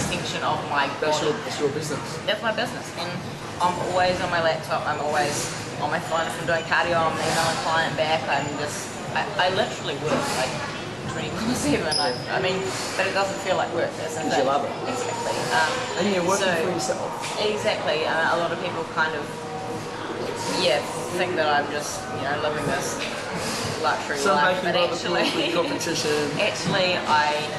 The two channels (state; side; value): identical; both; correlation 1.00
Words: of my body. That's your business. That's my business, and I'm always on my laptop. I'm always on my phone. If I'm doing cardio, I'm emailing a client back. I literally work like 24/7. I mean, but it doesn't feel like work. Because you love it. Exactly. And you're working for yourself. Exactly. A lot of people kind of think that I'm just living this luxury life, but actually, competition. actually, I